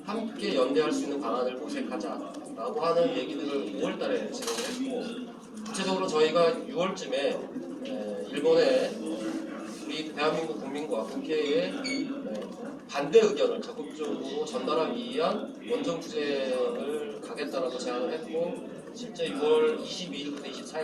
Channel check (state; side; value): identical; both; correlation 1.00